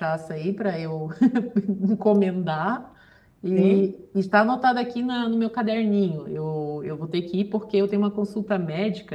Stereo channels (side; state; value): both; identical; correlation 1.00